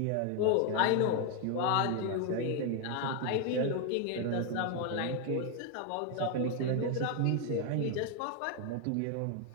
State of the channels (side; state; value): both; different; correlation 0.01